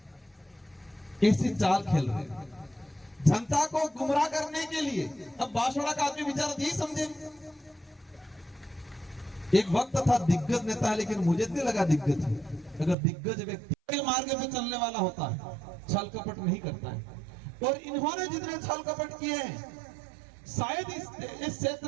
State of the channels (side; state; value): left; drops out; at 13.0 s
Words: ऐसी चाल खेल रहे जनता को गुमराह करने के लिए। अब बांसवाड़ा का आदमी बेचारा यही समझे, एक वक्त था दिग्गज नेता है, लेकिन मुझे नहीं लगा दिग्गज है। अगर दिग्गज व्यक्ति के मार्ग पे चलने वाला होता है, छल कपट नहीं करता है, और इन्होंने जितने छल कपट किए हैं, शायद इस